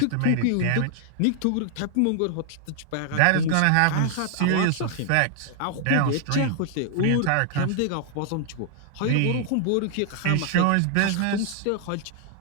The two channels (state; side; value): different; both; correlation 0.00